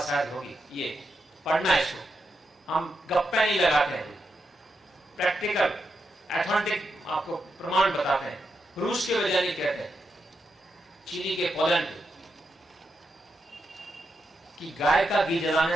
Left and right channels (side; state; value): both; normal; correlation 0.85